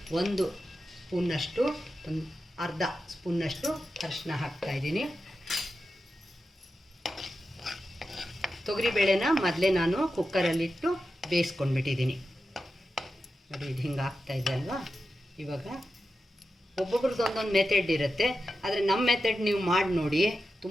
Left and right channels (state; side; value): normal; both; correlation 0.91